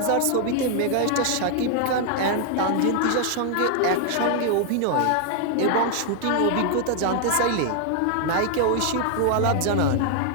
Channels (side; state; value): both; different; correlation 0.00